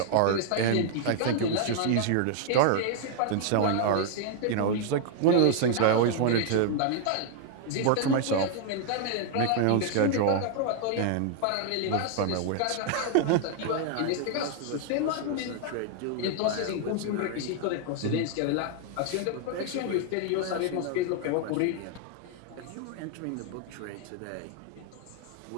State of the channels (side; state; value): both; different; correlation 0.00